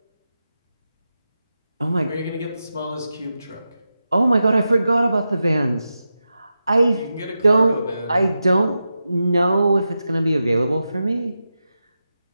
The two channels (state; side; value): inverted; both; correlation -0.90